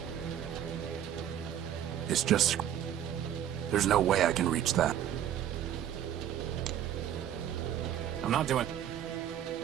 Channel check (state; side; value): quieter; left; 10.4 dB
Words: It's just... There's no way I can reach that. I'm not doing...